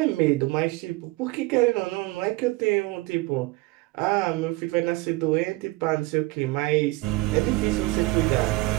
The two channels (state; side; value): quieter; left; 20.9 dB